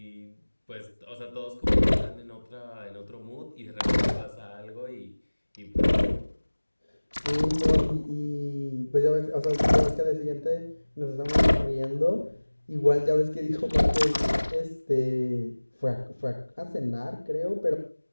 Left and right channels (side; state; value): both; inverted; correlation -1.00